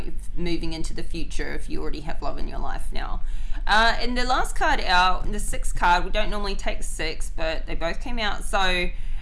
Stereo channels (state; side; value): identical; both; correlation 1.00